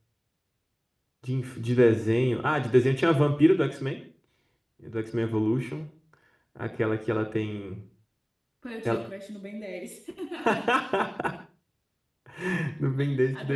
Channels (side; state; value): both; identical; correlation 1.00